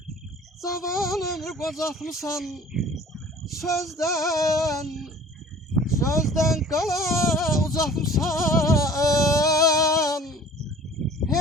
zaman ömür bozatmışsan. Sözden kala uzatmışsan.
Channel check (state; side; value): normal; both; correlation 0.48